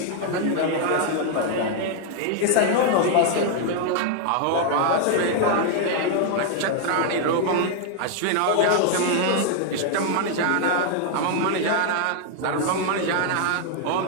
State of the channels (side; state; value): both; different; correlation 0.00